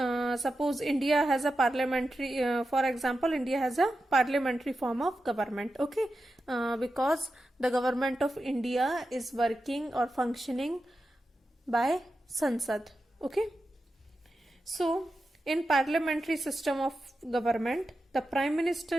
suppose India has a parliamentary, for example, India has a parliamentary form of government. Okay, because the government of India is working or functioning by Sansad. Okay, so in parliamentary system of government, the prime minister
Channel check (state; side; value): normal; both; correlation 0.91